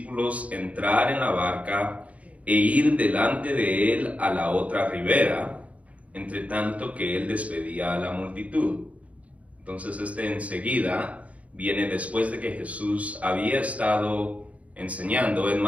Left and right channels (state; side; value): late; left; 0.066 ms